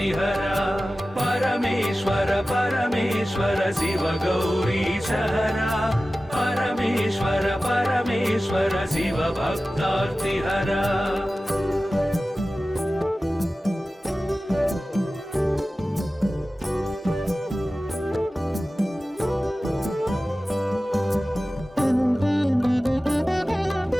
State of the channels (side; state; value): both; normal; correlation 0.96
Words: परमेश्वर परमेश्वर शिव गौरीशहरा परमेश्वर परमेश्वर शिव भक्तार्तिहरा